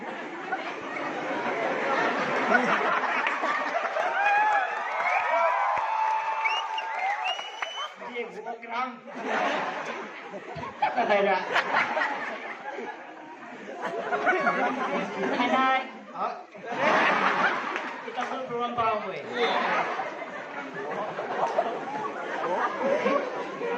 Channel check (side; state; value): both; identical; correlation 1.00